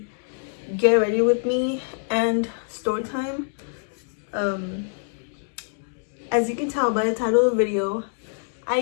get ready with me and story time. As you can tell by the title of the video, I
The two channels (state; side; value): silent; right; 62 dB below the other